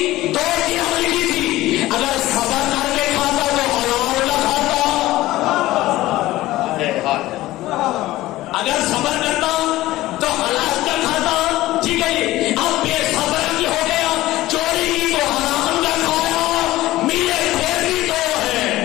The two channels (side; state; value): right; quieter; 16.7 dB